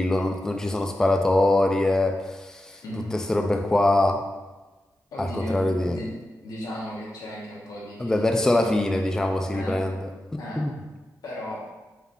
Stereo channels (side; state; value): both; normal; correlation 0.91